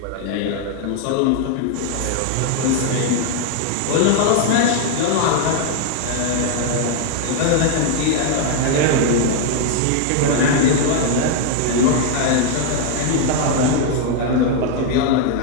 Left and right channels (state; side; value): different; both; correlation 0.00